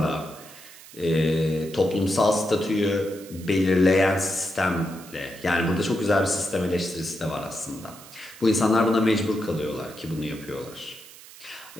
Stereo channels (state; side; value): noise; right; hiss, 19 dB below the sound